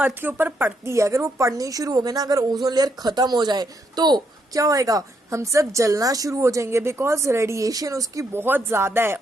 के ऊपर पड़ती है, अगर वो पड़नी शुरू हो गई ना, अगर ओजोन लेयर खत्म हो जाए तो क्या होएगा, हम सब जलना शुरू हो जाएंगे, बिकॉज रेडिएशन उसकी बहुत ज्यादा है।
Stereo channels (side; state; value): both; normal; correlation 0.77